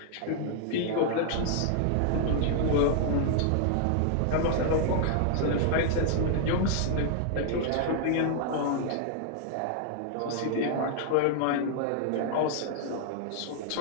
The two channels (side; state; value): both; different; correlation -0.01